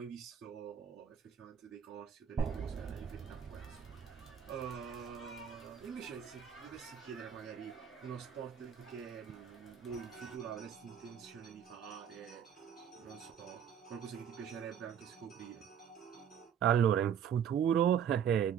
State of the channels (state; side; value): quieter; left; 8.5 dB